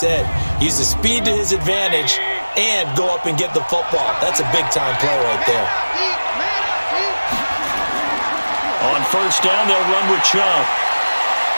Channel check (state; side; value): inverted; both; correlation -1.00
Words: Use the speed to his advantage and go up and get the football. That's a big-time play right there. On first down, they'll run with Chubb.